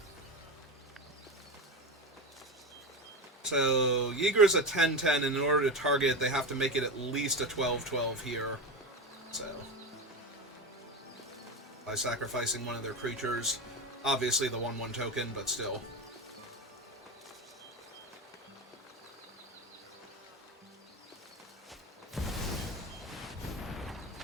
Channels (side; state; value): both; normal; correlation 0.20